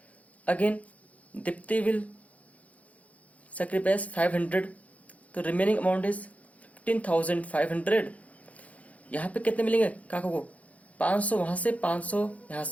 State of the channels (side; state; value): right; late; 0.068 ms